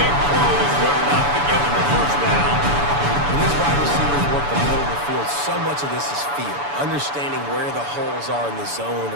big throw is good enough to give him a first down. When these wide receivers work the middle of the field, so much of this is feel. Understanding where the holes are in the zone,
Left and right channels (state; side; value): late; left; 7.0 ms